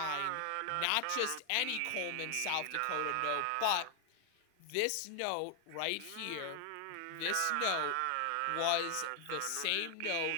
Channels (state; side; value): different; both; correlation 0.00